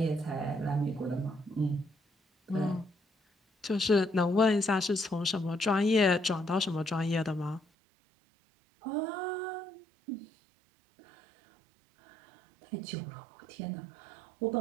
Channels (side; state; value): left; drops out; at 7.6 s